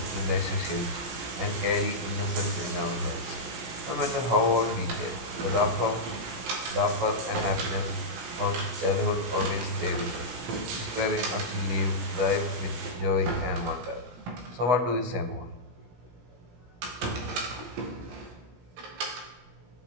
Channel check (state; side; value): late; left; 16 ms